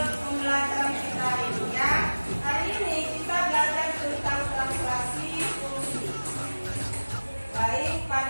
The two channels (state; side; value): inverted; both; correlation -1.00